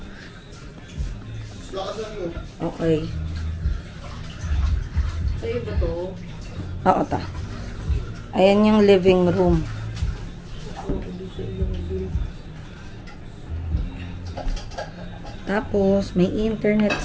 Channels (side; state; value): both; identical; correlation 1.00